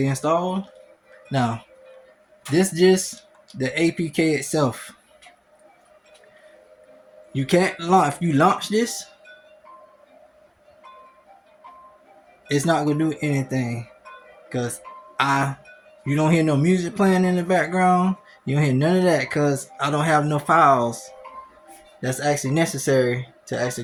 installed now. This just the APK itself. You can't launch. If you launch this, it's not gonna do anything because you don't hear no music playing in the background. You don't hear none of that because I don't have no files that's actually necessary to actually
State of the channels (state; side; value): identical; both; correlation 1.00